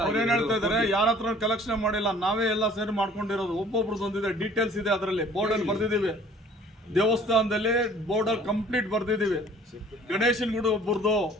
ಅವ್ರು ಏನ್ ಹೇಳ್ತಾ ಇದಾರೆ, ಯಾರ ಹತ್ರ ಕಲೆಕ್ಷನ್ ಮಾಡಿಲ್ಲ, ನಾವೇ ಎಲ್ಲ ಸೇರಿ ಮಾಡ್ಕೊಂಡಿರೋದು. ಒಬ್ಬೊಬ್ರದ್ದು ಒಂದಿದೆ, ಡೀಟೇಲ್ಸ್ ಇದೆ ಅದರಲ್ಲಿ, ಬೋರ್ಡಲ್ಲಿ ಬರ್ದಿದ್ದೀವಿ. ದೇವಸ್ಥಾನದಲ್ಲಿ ಬೋರ್ಡಲ್ಲಿ ಕಂಪ್ಲೀಟ್ ಬರ್ದಿದ್ದೀವಿ. ಗಣೇಶನ್ ಗುಡಿ ಒಬ್ಬರದು,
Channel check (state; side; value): normal; both; correlation 0.52